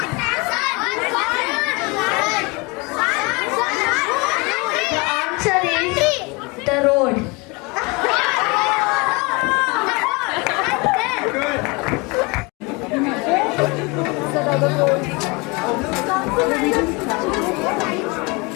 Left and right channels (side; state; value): right; quieter; 27.5 dB